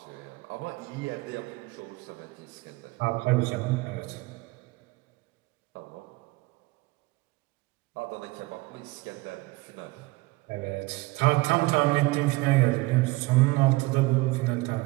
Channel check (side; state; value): left; quieter; 22.3 dB